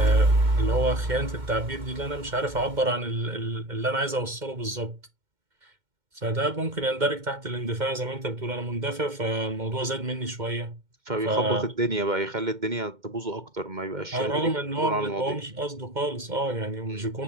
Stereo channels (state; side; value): late; left; 2.1 ms